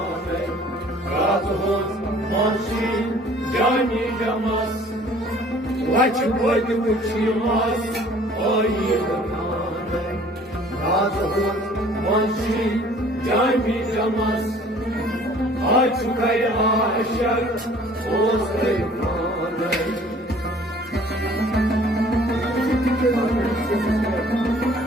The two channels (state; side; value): normal; both; correlation 0.53